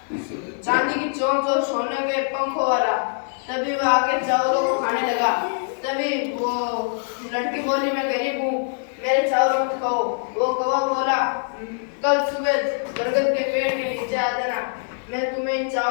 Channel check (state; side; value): silent; right; digital silence